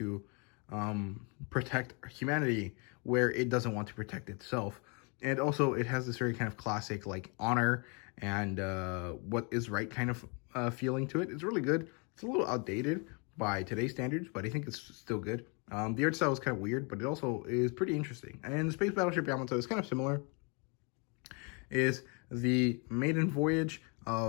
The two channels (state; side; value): quieter; right; 33.9 dB